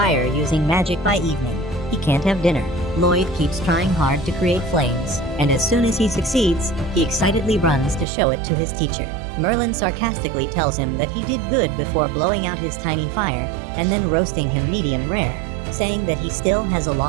using magic by evening, he can't have dinner. Lloyd keeps trying hard to create flames, and as soon as he succeeds, he excitedly runs to show it to his teacher. Merlin sarcastically tells him that he did good before blowing out his tiny fire, and then roasting him medium rare, saying that he still has a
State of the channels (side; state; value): left; drops out; at 8.1 s